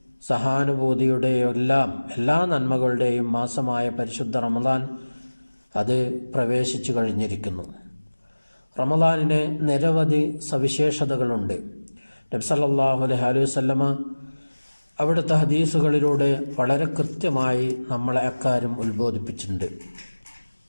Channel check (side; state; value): both; inverted; correlation -1.00